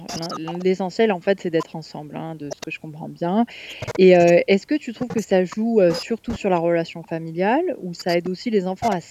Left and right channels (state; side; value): identical; both; correlation 1.00